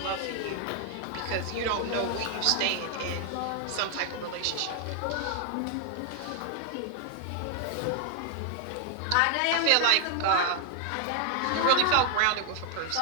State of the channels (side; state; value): both; different; correlation 0.00